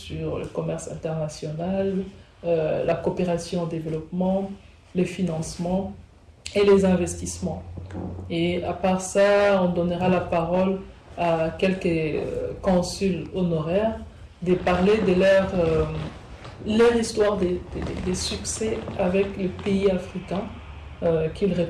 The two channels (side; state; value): both; identical; correlation 1.00